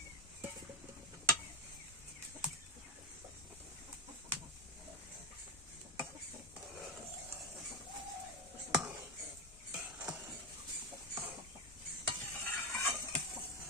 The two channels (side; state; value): both; normal; correlation 0.11